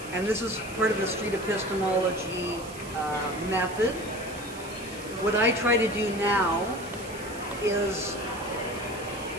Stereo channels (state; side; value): noise; right; hiss, 16 dB below the sound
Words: and this is part of the street epistemology method. What I try to do now is